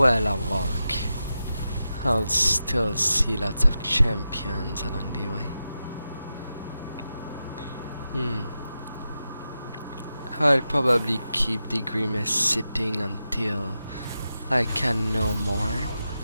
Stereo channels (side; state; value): both; inverted; correlation -0.90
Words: I'll walk. I'll still see lots of champions along the way. I'll probably keep the Grimace sitting until I can no more.